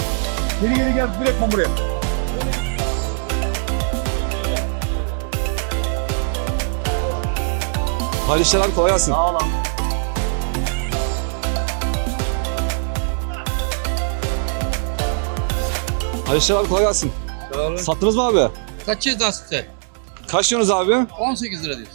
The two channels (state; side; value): silent; left; digital silence